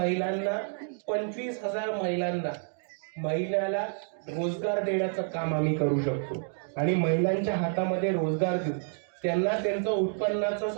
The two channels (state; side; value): silent; left; 58 dB below the other